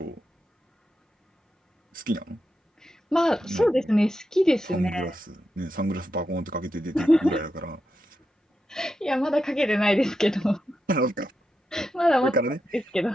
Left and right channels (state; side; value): normal; both; correlation 0.87